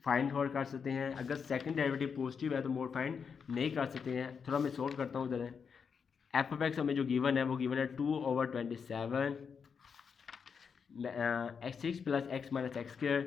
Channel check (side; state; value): right; quieter; 6.3 dB